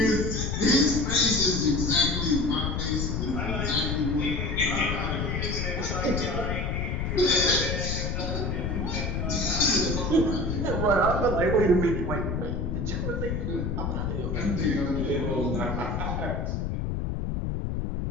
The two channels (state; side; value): noise; left; rumble, 1 dB below the sound